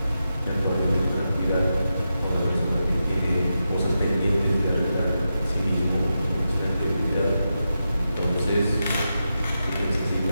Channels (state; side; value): inverted; both; correlation -0.88